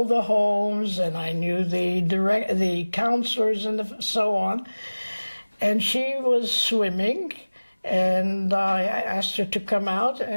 the homes, and I knew the counselors and so on. And she was swimming, and I asked her to come out,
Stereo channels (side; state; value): both; inverted; correlation -1.00